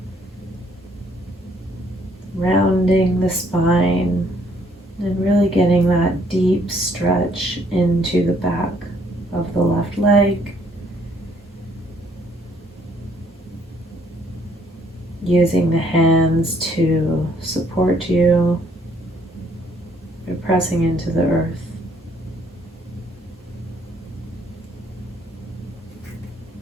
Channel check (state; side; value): normal; both; correlation 0.65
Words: rounding the spine, and really getting that deep stretch into the back of the left leg. Using the hands to support you. You're pressing into the earth.